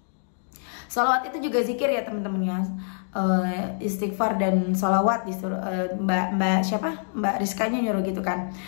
Sholawat itu juga zikir ya teman-teman ya. Istighfar dan sholawat disuruh Mbak Rizkanya nyuruh gitu kan.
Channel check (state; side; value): silent; right; digital silence